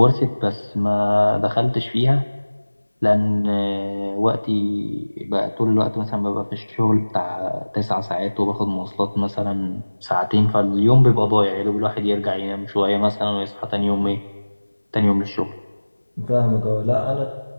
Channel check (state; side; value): inverted; both; correlation -1.00